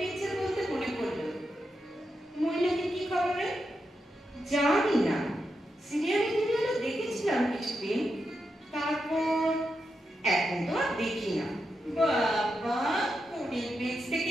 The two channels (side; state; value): both; normal; correlation 0.86